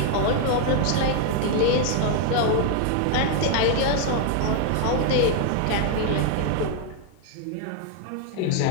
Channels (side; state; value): both; different; correlation 0.00